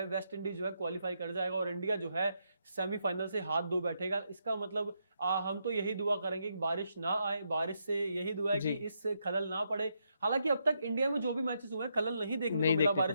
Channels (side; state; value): both; inverted; correlation -0.79